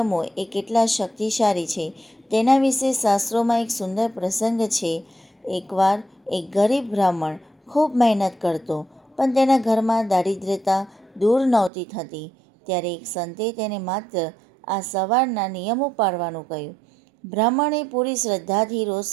એ કેટલા શક્તિશાળી છે તેના વિશે શાસ્ત્રોમાં એક સુંદર પ્રસંગ છે. એકવાર એક ગરીબ બ્રાહ્મણ ખૂબ મહેનત કરતો પણ તેના ઘરમાં દારિદ્ર્યતા દૂર નહોતી થતી. ત્યારે એક સંતે તેને માત્ર આ સવારના નિયમો પાળવાનું કહ્યું. બ્રાહ્મણે પૂરી શ્રદ્ધાથી રોજ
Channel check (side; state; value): left; drops out; at 11.7 s